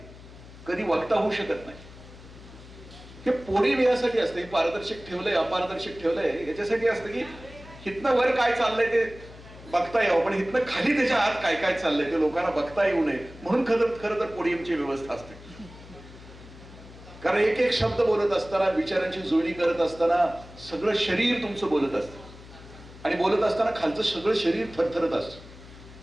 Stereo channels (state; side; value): noise; left; hum, 18 dB below the sound